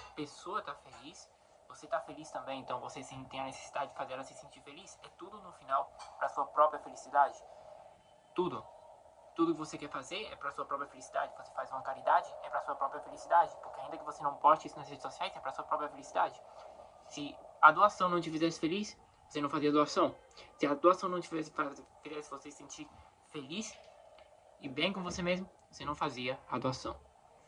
pessoa tá feliz, você tá feliz também, então você tem a necessidade de fazer ela se sentir feliz. É tudo no final para sua própria felicidade. Tudo. Tudo que você quer fazer é para sua própria felicidade. Você faz uma caridade, é para sua própria felicidade, porque ainda que você não poste isso nas redes sociais, é para sua própria felicidade. Se a doação não te fizesse feliz, você não fazia doação. Se a doação não te fizesse você se sentir feliz e bem com você mesmo, você não fazia a doação.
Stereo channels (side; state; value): both; identical; correlation 1.00